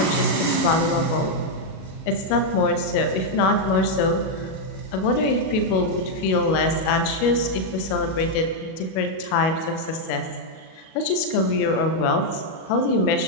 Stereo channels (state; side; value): late; right; 37 ms